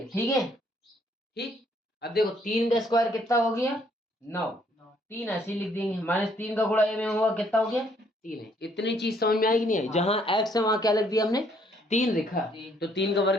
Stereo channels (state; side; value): normal; both; correlation 0.66